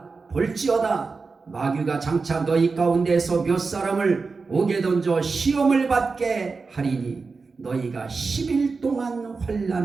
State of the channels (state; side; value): quieter; left; 4.4 dB